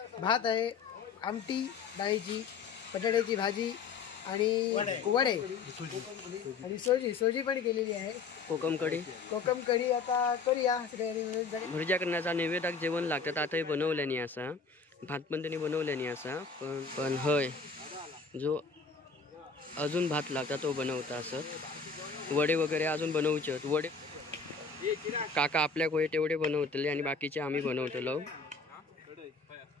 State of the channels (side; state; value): right; quieter; 4.7 dB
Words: भात आहे, आमटी डाळीची, बटाट्याची भाजी आणि वडे आणि सोजी पण केलेली आहे. कोकम कढी आता करूया. भुर्जा करण्याचा नैवेद्याक जेवण लागतात. आता हे बनवल्यानी असा, भात पण त्यांनी बनवल्यानी असा, पण हय जो अजून भात लागता तो बनवता असत. वडे वगैरे अजून बनवचे. वडे काका आपल्या कोय तेवढे बनवतले आणि बाकीचे आम्ही बनवतलो.